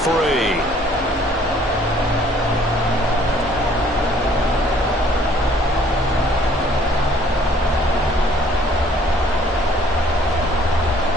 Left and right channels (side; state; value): both; normal; correlation 0.59